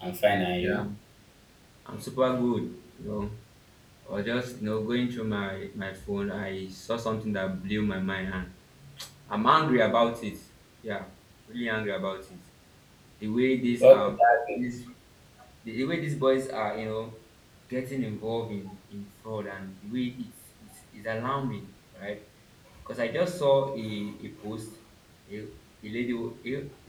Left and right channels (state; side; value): identical; both; correlation 1.00